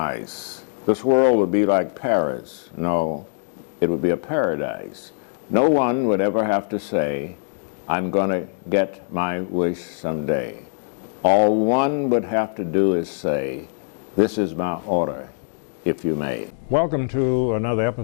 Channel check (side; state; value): right; silent; digital silence